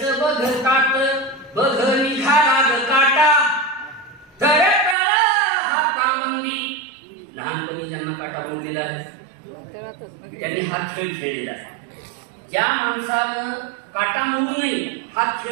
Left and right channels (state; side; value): drops out; left; at 5.0 s